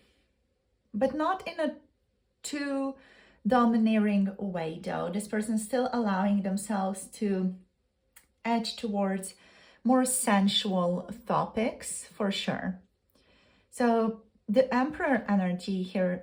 But not in a too domineering way though. This person is still allowing themselves to edge towards more sensual topics for sure. So the Emperor energy here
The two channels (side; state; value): both; identical; correlation 1.00